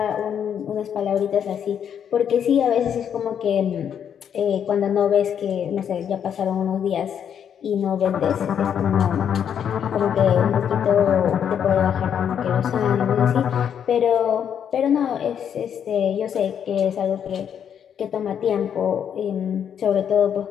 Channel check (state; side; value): quieter; right; 8.5 dB